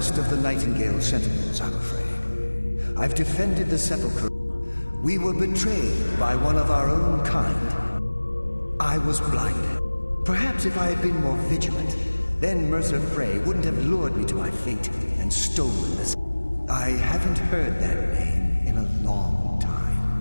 of the Nightingale Sentinels, I'm afraid. I've defended the Sepulchre. We were betrayed by one of our own kind. I was blinded. Perhaps if I had been more vigilant, then Mercer Frey wouldn't have lured me to my fate and stolen this. I haven't heard that name in a long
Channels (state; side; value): inverted; both; correlation -1.00